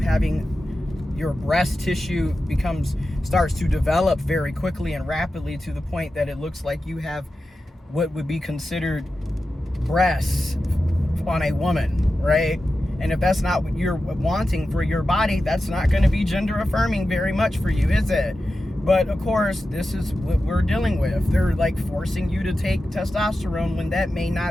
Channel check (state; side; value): normal; both; correlation 0.92